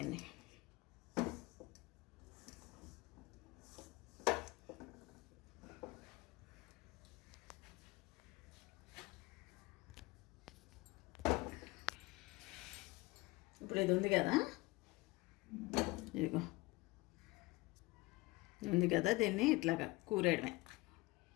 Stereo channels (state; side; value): quieter; right; 22.2 dB